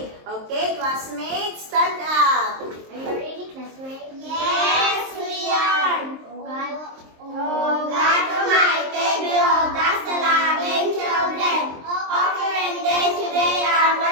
Okay, classmates, stand up. Are you ready, classmate? Yes, we are. Oh God, Oh God Almighty, behold us the loving children of your day today our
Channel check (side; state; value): left; late; 23 ms